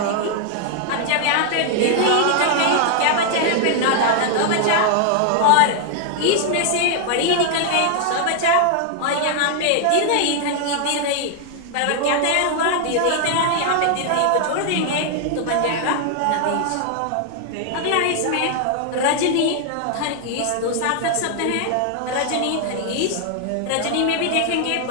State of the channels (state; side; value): different; both; correlation 0.00